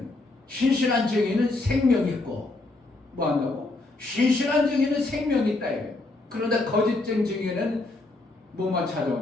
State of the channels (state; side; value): quieter; right; 3.1 dB